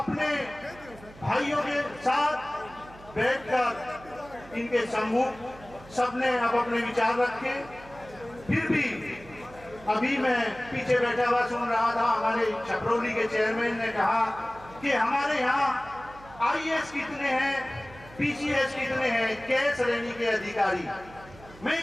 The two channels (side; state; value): right; noise; hum, 20 dB below the sound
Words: भाइयों के साथ बैठकर इनके सम्मुख सबने अब अपने विचार रखे। फिर भी अभी मैं पीछे बैठा हुआ सुन रहा था, हमारे छपरौली के चेयरमैन ने कहा कि हमारे यहाँ IAS कितने हैं, PCS कितने हैं, क्या श्रेणी के अधिकारी। मैं